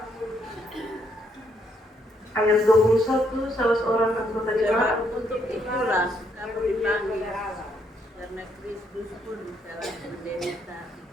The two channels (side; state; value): both; normal; correlation 0.73